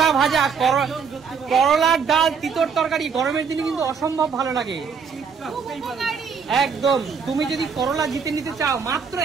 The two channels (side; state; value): left; quieter; 6.0 dB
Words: ভাজা, করলার ডাল, তিতর তরকারি গরমের দিনে কিন্তু অসম্ভব ভালো লাগে একদম। তুমি যদি করলা জিতে নিতে চাও মাত্র